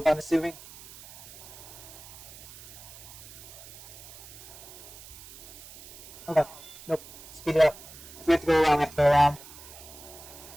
I'm assuming. Okay. Nope. Speed it up. If we have to go around, we have to go around.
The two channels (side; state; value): right; noise; hiss, 17 dB below the sound